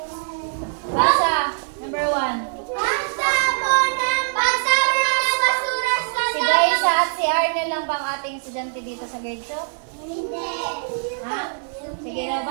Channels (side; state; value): left; silent; digital silence